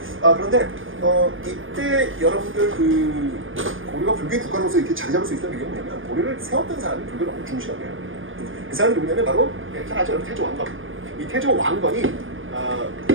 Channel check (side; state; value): left; late; 0.58 ms